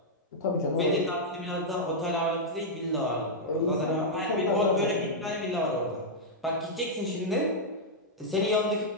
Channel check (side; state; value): both; normal; correlation -0.05